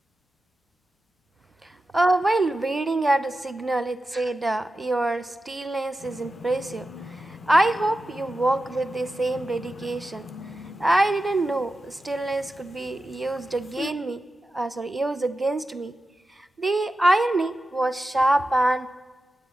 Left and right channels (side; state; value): both; normal; correlation 0.92